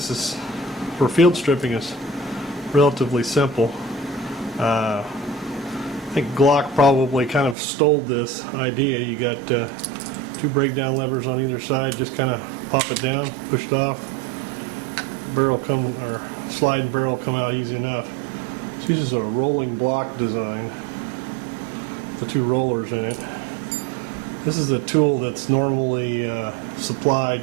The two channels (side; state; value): left; drops out; at 7.6 s